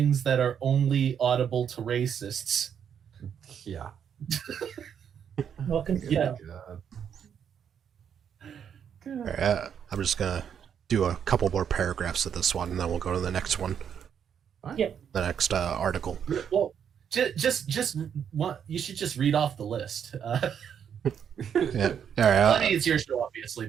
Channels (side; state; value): left; quieter; 8.2 dB